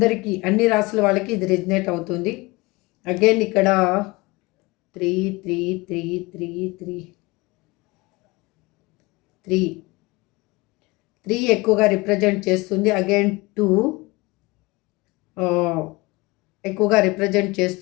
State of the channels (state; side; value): quieter; right; 23.2 dB